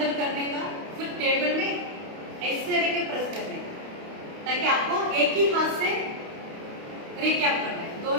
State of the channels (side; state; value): left; late; 28 ms